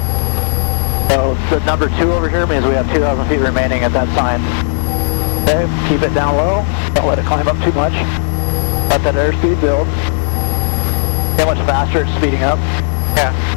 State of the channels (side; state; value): right; silent; 59 dB below the other